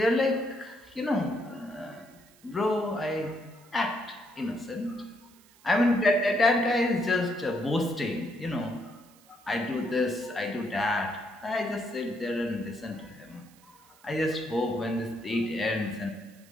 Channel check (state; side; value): noise; right; hiss, 27 dB below the sound